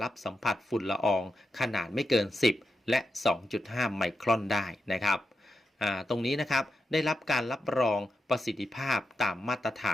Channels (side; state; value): both; normal; correlation 0.86